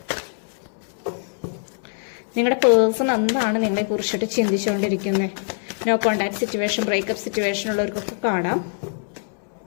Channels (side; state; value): right; silent; 63 dB below the other